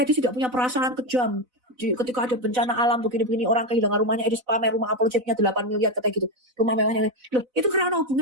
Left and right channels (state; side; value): late; left; 4.0 ms